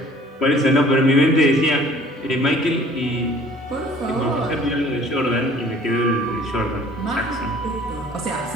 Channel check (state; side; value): normal; both; correlation 0.53